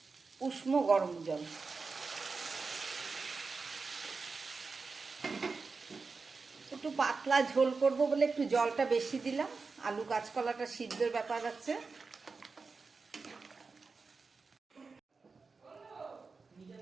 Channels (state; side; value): quieter; left; 4.4 dB